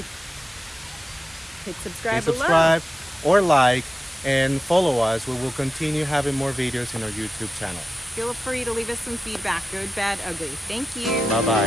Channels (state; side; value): normal; both; correlation 0.93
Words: hit subscribe, hit subscribe or like and follow us. We will continue having more videos in our YouTube channel. Feel free to leave us some feedback, good, bad, ugly. Thank you.